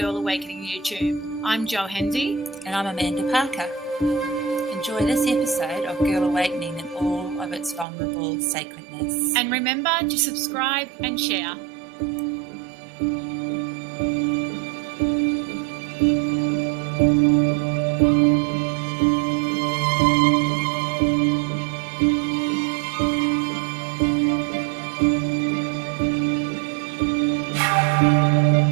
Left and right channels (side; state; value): left; drops out; at 7.9 s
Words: Awakening YouTube. I'm Jaali Hendy. And I'm Amanda Parker. Enjoy this episode of Girl Awakening in all of its vulnerable sacredness. And remember to subscribe and share.